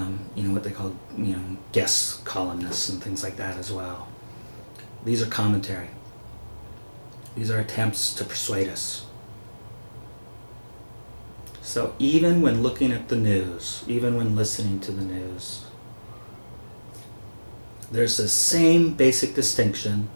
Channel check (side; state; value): both; inverted; correlation -1.00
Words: they call guest columnists and things like that as well. These are commentary. These are attempts to persuade us. So even when looking at the news, even when listening to the news, there's the same basic distinction